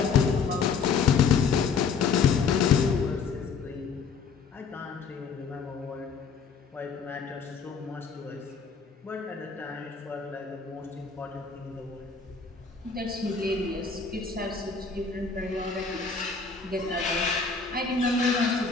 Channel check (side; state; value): right; quieter; 5.5 dB